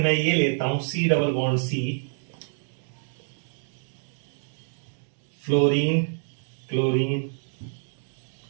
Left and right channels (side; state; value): left; silent; 58 dB below the other